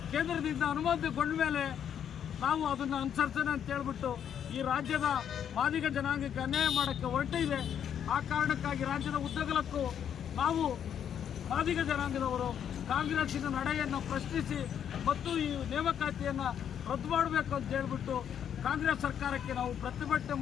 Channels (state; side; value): quieter; right; 8.9 dB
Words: ಕೇಂದ್ರದಿಂದ ಅನುಮೋದನೆಗೊಂಡ ಮೇಲೆ ನಾವು ಅದನ್ನು ಅನುಸರಿಸೋಣ ಅಂತ ಹೇಳ್ಬಿಟ್ಟು ಈ ರಾಜ್ಯದ ಮಾದಿಗ ಜನಾಂಗಕ್ಕೆ ಅನ್ಯಾಯ ಮಾಡೋಕ್ಕೆ ಹೊರಟಿದೆ. ಆ ಕಾರಣಕ್ಕಾಗಿ ರಾಜ್ಯದ ಉದ್ದಗಲಕ್ಕೂ ನಾವು ಮಾದಿಗ ಜನಾಂಗದವರು ಕಾಂಗ್ರೆಸ್ಸಿನ ನಡೆಯನ್ನು ಪ್ರಶ್ನಿಸಿ ಮತ್ತು ಈ ನೇಮಕಾತಿಯನ್ನು ರದ್ದು ಮಾಡಬೇಕು ಅಂತ ಹೇಳ್ಬಿಟ್ಟು ಕಾಂಗ್ರೆಸ್ ಸರ್ಕಾರಕ್ಕೆ ನಾವು ಪ್ರತಿಭಟನೆ